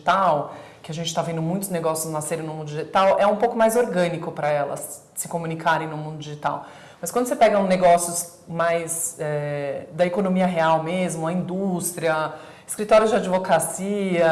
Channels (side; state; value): both; identical; correlation 1.00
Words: que a gente está vendo muitos negócios nascerem no mundo digital, é um pouco mais orgânico para elas se comunicarem no mundo digital. Mas quando você pega negócios mais da economia real mesmo, a indústria, escritórios de